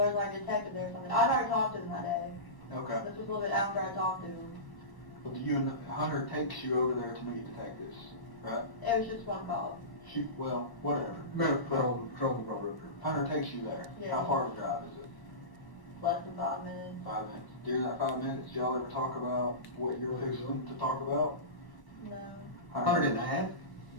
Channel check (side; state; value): right; late; 1.1 ms